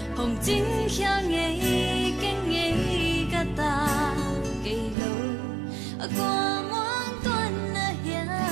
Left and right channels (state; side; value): drops out; left; at 5.0 s